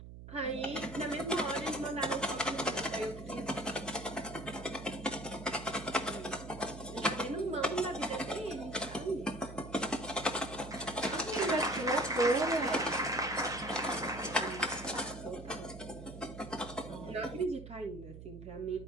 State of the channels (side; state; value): right; noise; hum, 13 dB below the sound